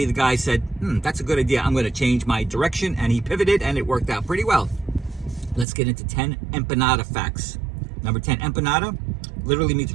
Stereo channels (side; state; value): left; drops out; at 5.7 s